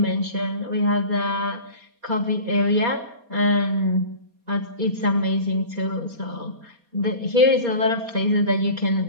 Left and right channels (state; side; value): late; left; 4.2 ms